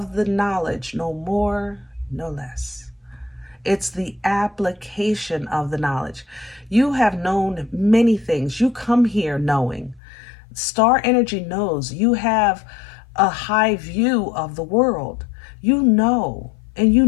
the knowledge, no more, no less. It's the application of the knowledge. You have known many things. You come here knowing. Star energy knows. You have a high view of the world. You know, and you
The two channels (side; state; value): right; drops out; at 10.0 s